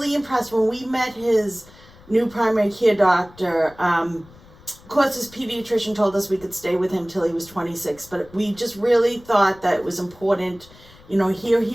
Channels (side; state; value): left; noise; rumble, 24 dB below the sound